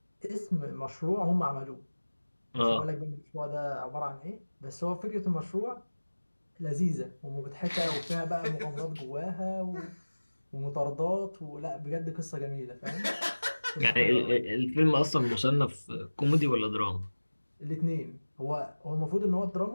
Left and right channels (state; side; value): inverted; both; correlation -1.00